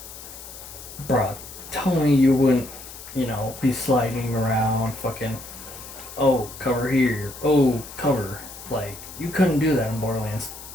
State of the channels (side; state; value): left; noise; hiss, 14 dB below the sound